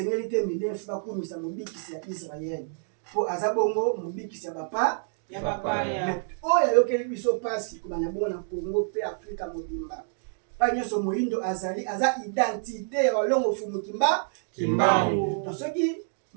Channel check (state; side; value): silent; left; digital silence